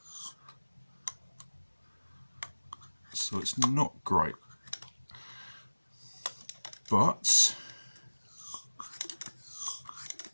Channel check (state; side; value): inverted; both; correlation -1.00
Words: So it's not great. But